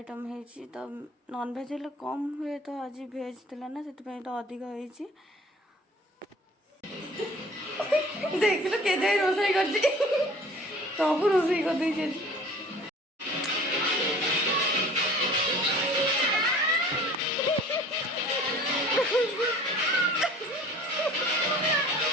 होती। तो नॉन भेज हेल्ले कम हुए तो आज भेज थिला ना से तो अधिक होती। देख लो के जाए रोसई कर सब रोसई कर दे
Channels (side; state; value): both; normal; correlation 0.47